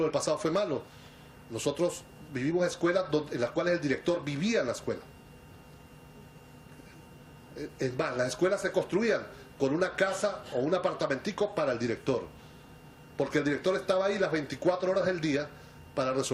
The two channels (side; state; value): both; identical; correlation 1.00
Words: del pasado fue malo. Nosotros vivimos escuelas en las cuales el director vivía en la escuela. Es más, las escuelas se construían con una casa o un apartamentico para el director. Porque el director estaba ahí las 24 horas del día para